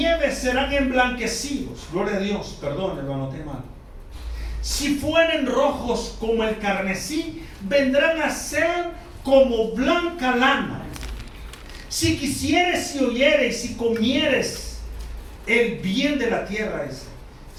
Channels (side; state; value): both; identical; correlation 1.00